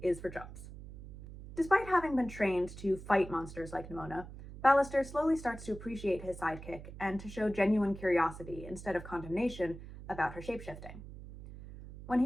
is for chumps. Despite having been trained to fight monsters like Nimona, Ballister slowly starts to appreciate his sidekick and to show genuine curiosity instead of condemnation about her shapeshifting. When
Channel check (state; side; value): noise; right; hum, 14 dB below the sound